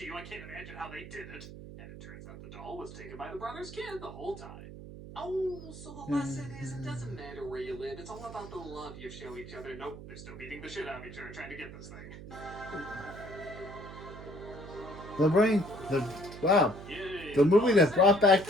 you. I can't imagine how they did it. And it turns out the doll was taken by the brother's kid the whole time. Oh, so the lesson is it doesn't matter where you live. It's all about the love you show each other. Nope, they're still beating the shit out of each other trying to get this thing. The brain. Wow. Yay, The movie that brought back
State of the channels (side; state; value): right; noise; hum, 13 dB below the sound